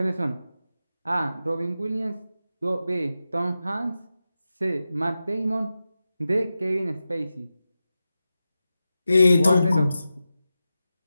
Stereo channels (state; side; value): inverted; both; correlation -0.92